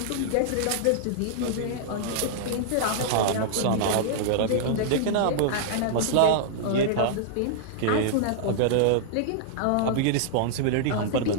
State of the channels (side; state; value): both; different; correlation -0.01